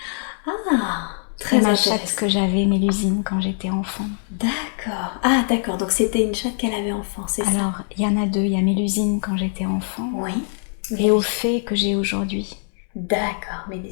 Ah, C'est très ma intéressant. chatte que j'avais, Mélusine, quand j'étais enfant. D'accord. Ah, d'accord. Donc, c'était une chatte qu'elle avait enfant, c'est ça? Alors, il y en a deux. Il y a Mélusine quand j'étais enfant Oui. et au fait que j'ai aujourd'hui. D'accord,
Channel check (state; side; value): silent; right; 64 dB below the other